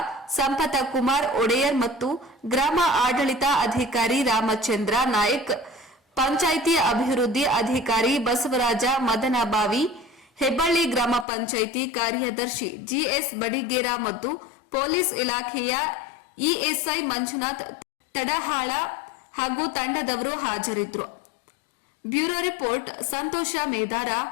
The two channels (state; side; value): drops out; right; at 11.2 s